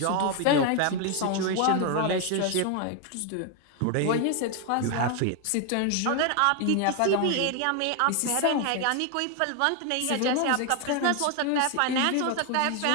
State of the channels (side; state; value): both; different; correlation 0.01